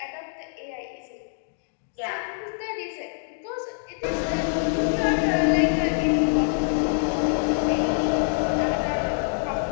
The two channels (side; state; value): right; silent; digital silence